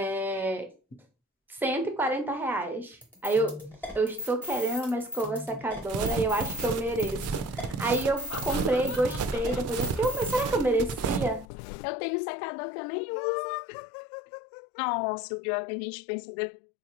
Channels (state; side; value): drops out; right; at 11.5 s